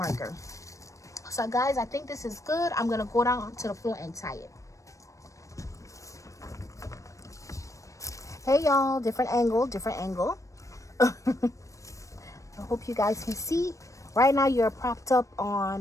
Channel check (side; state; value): right; late; 0.16 ms